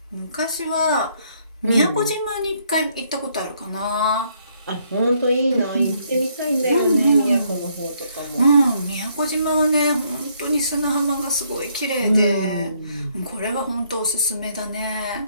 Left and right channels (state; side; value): inverted; both; correlation -0.70